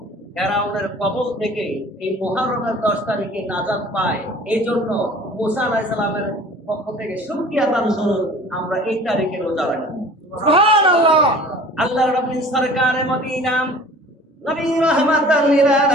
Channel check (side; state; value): both; normal; correlation 0.46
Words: ফেরাউনের কবল থেকে এই মুহররমের 10 তারিখে নাজাত পায়, এই জন্য মূসা আলাইহিস সালামের পক্ষ থেকে শুকরিয়া আদান স্বরূপ আমরা এই তারিখে রোজা রাখি। সুবহানাল্লাহ। আল্লাহর নবী সরকারে মদিনা নবী রাহমাতাল লিল